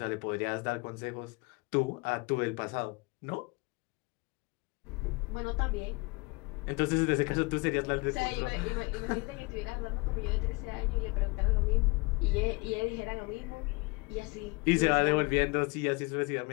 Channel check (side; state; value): right; quieter; 27.3 dB